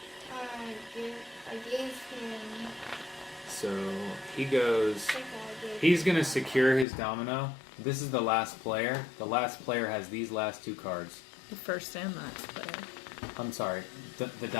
I gave him. So he goes. I think I gave He's going to secure his domino. This is the last player. The last player has these last 2 cards. The first and last player. I'm sorry, the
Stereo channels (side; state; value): right; drops out; at 6.9 s